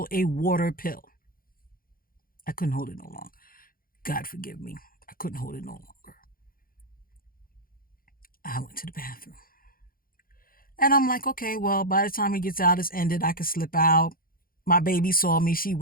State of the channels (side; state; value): right; late; 0.42 ms